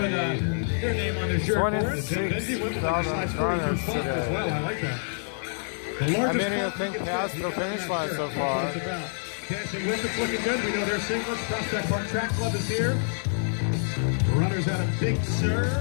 their name on their shirt for us. Benji went with like a size 42 font as well. I like that. The How largest many font think you can past fit, the you got finish right line there. so That's far? what it's about. Dancing with it's looking good. We know their singlets. Prospect Park Track Club is here. Runners out of Big Sur.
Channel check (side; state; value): right; silent; digital silence